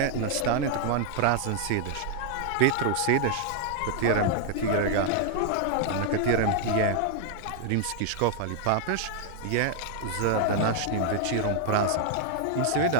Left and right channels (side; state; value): both; different; correlation 0.00